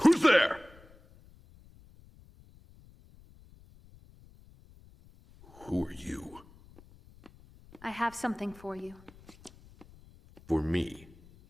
Who's there? Who are you? I have something for you. For me?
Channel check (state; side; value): noise; left; rumble, 24 dB below the sound